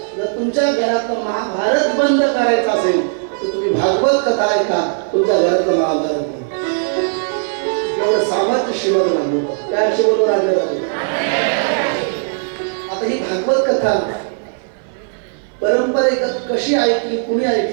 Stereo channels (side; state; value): left; silent; 57 dB below the other